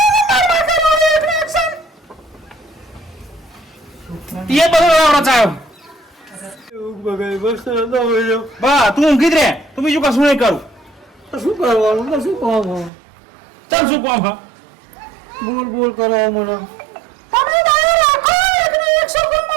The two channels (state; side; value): drops out; left; at 12.9 s